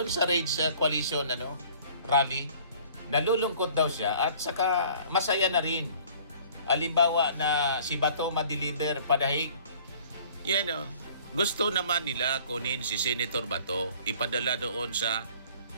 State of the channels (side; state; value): both; inverted; correlation -0.51